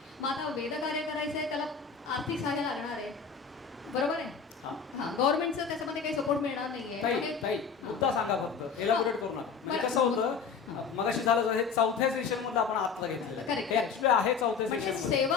मग आता वेद कार्य करायचं आहे, त्याला आर्थिक सहाय्य लागणार आहे, बरोबर आहे. हा, गव्हर्नमेंटचं त्याच्यामध्ये काही सपोर्ट मिळणार नाहीये. मुद्दा सांगा फक्त, एलाबोरेट करू नका. कसं होतं, मगाशी झालं हे चौथ्या सेशन मध्ये आपण आत्ता घेतलेलं आहे चौथ्या सेशन.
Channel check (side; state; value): right; quieter; 5.8 dB